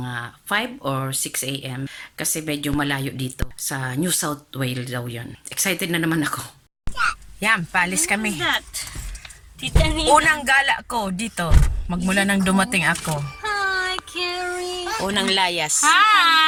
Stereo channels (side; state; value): both; identical; correlation 1.00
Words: 5 or 6 a.m. kasi medyo malayo dito. Sa New South Wales daw yun. Excited na naman ako. Yan, paalis kami. Unang gala ko dito. Magmula nang dumating ako. Hi, Carrie. Unang layas.